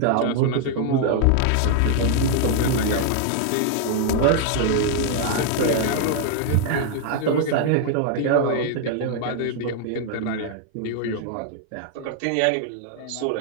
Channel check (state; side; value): different; both; correlation 0.00